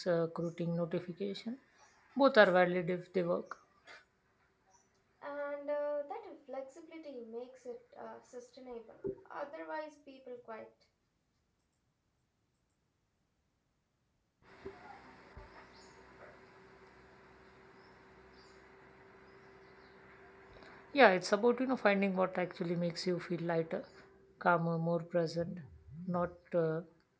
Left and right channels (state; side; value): identical; both; correlation 1.00